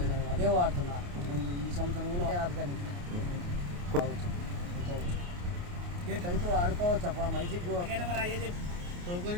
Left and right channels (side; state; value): left; late; 28 ms